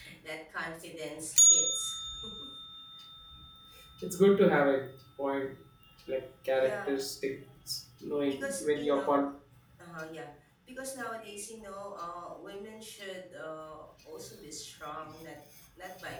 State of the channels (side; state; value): both; identical; correlation 1.00